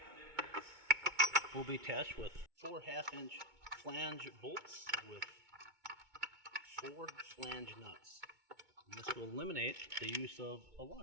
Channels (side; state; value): left; late; 2.2 ms